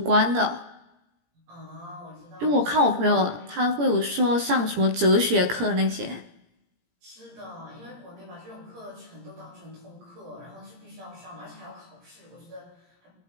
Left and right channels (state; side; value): late; left; 17 ms